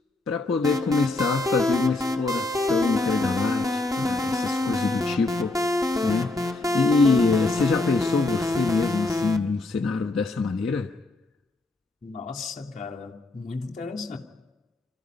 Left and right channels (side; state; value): right; quieter; 3.0 dB